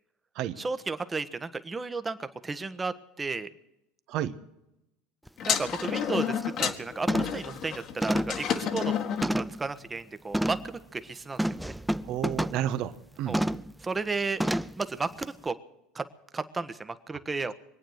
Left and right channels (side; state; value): both; normal; correlation 0.78